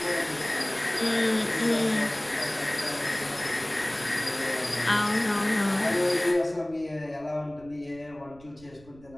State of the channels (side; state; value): right; noise; rumble, 24 dB below the sound